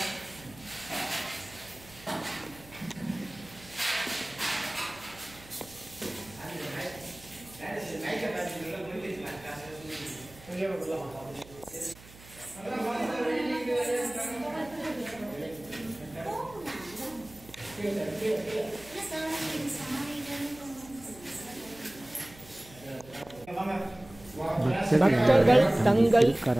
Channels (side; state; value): right; noise; hum, 21 dB below the sound